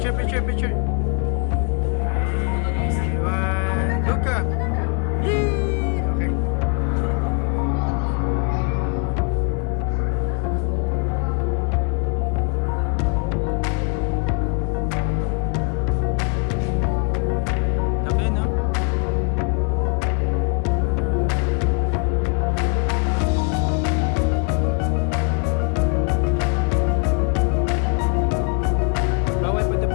picture, picture. 3, 1, Luka. Yee! Okay. Laki, no? Bawal pa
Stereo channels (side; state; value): right; quieter; 34.5 dB